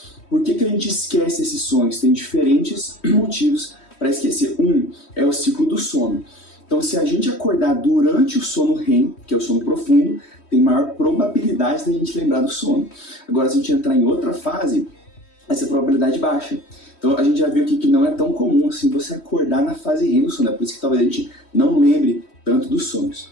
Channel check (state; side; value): late; right; 3.1 ms